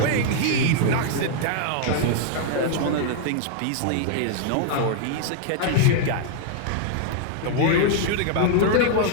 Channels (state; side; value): different; both; correlation 0.00